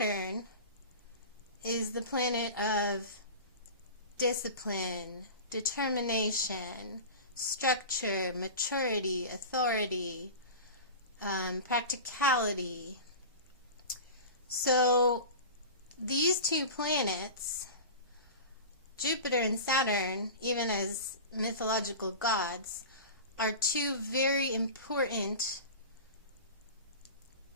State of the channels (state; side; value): inverted; both; correlation -0.32